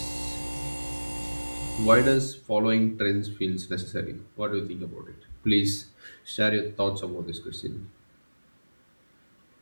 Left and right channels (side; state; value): both; inverted; correlation -1.00